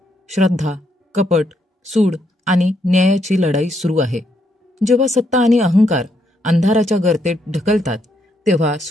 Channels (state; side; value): normal; both; correlation 0.76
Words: श्रद्धा, कपट, सूड आणि न्यायाची लढाई सुरू आहे. जेव्हा सत्ता आणि अहंकार अंधाराच्या गर्तेत ढकलतात, तेव्हा